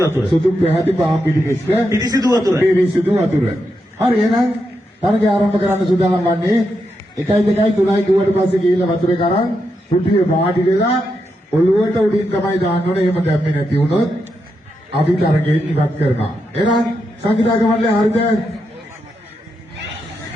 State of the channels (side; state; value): both; normal; correlation 0.84